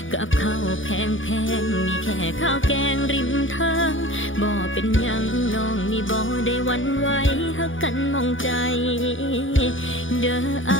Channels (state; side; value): late; right; 0.57 ms